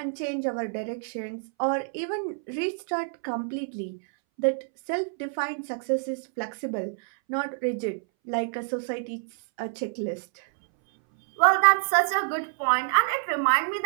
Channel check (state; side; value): silent; left; 60 dB below the other